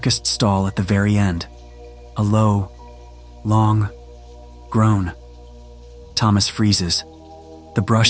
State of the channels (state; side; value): identical; both; correlation 1.00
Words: stall at the very end, a low, long groan. Thomas freezes. The